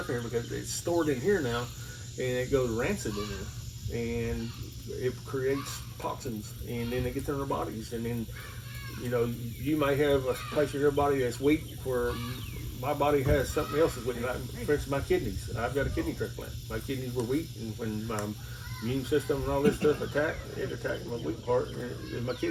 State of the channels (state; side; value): identical; both; correlation 1.00